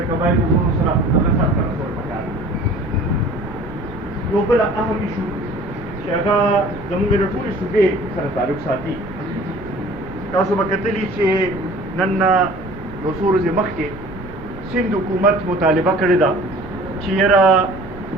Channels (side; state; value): right; noise; rumble, 15 dB below the sound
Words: قبایلو وروڼو سره هغه سرته رسول پکار یو بل اهم ایشو چې هغه زموږ د ټولې صوبې سره تعلق ساتي. تاسو به کتلي چې نن یو څو ورځې مخکې سند حکومت مطالبه کړې ده چې یاره